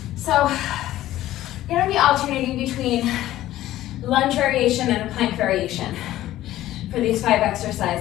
So we're going to be alternating between lunge variation and a plank variation for these 5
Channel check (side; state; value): right; quieter; 14.4 dB